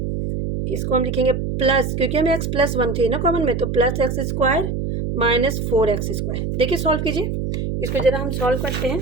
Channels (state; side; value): noise; right; hum, 2 dB below the sound